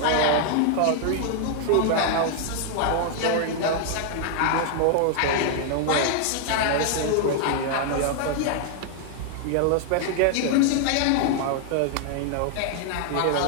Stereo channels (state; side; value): different; both; correlation 0.00